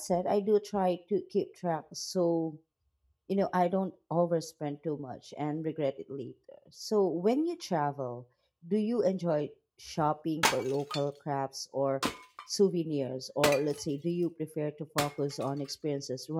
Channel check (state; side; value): identical; both; correlation 1.00